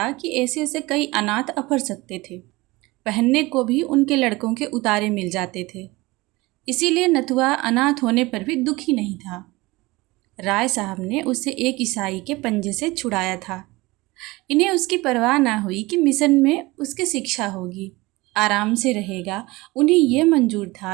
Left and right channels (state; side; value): quieter; left; 21.7 dB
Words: कि ऐसे ऐसे कई अनाथ अफर सकते थे। पहनने को भी उनके लड़कों के उतारे मिल जाते थे। इसीलिए नथुआ अनाथ होने पर भी दुखी नहीं था। राय साहब ने उसे एक ईसाई के पंजे से छुड़ाया था। इन्हें उसकी परवाह ना हुई कि मिशन में उसकी शिक्षा होगी, आराम से रहेगा। उन्हें यह मंजूर